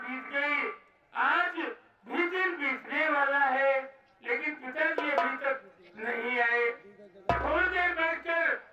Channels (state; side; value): identical; both; correlation 1.00